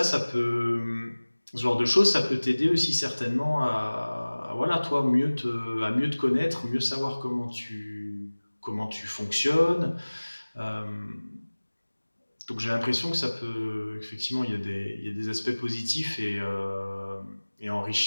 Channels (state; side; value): inverted; both; correlation -1.00